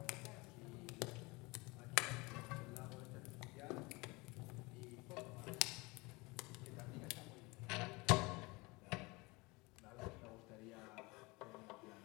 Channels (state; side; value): quieter; right; 24.8 dB